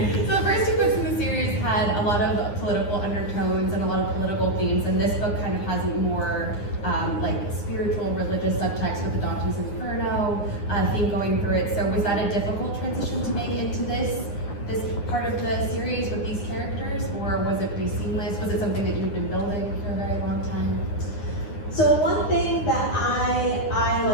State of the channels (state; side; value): late; right; 10 ms